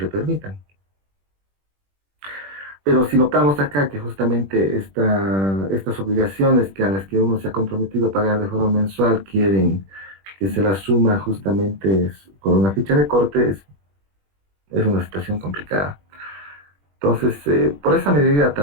permitan. Pero si notamos acá que justamente estas obligaciones a las que uno se ha comprometido a pagar de forma mensual quieren que se las suma justamente con una ficha de corte, es una situación complicada. Entonces, por esa medida,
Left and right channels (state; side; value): late; left; 21 ms